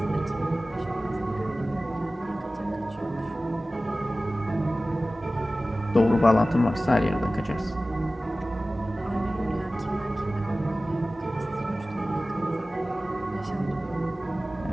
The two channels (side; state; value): both; normal; correlation 0.96